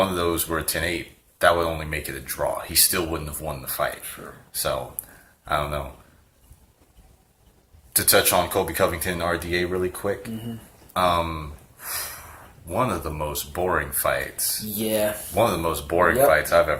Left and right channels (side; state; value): both; identical; correlation 1.00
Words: of those were a 10-8, that would only make it a draw. He still wouldn't have won the fight. Sure. So, I don't know. To touch on Colby Covington and RDA really quick, one of the most boring fights. Yeah. One of the most boring fights I've